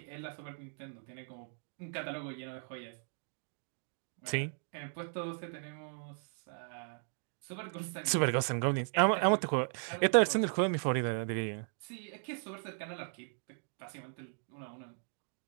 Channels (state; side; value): silent; left; 53 dB below the other